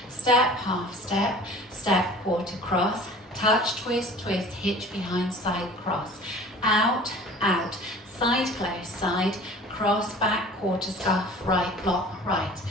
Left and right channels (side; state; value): both; normal; correlation 0.45